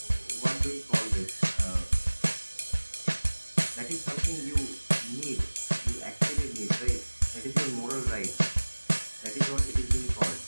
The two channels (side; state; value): both; inverted; correlation -1.00